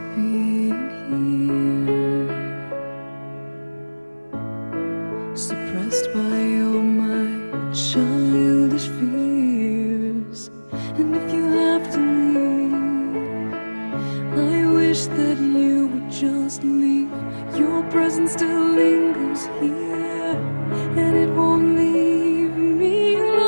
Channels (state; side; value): inverted; both; correlation -1.00